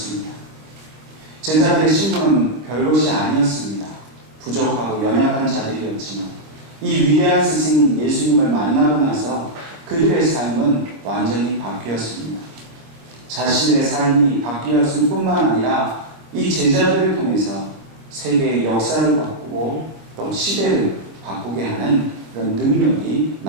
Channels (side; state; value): left; late; 25 ms